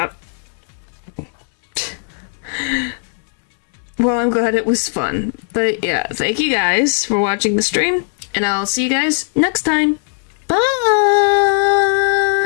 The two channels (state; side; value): silent; right; digital silence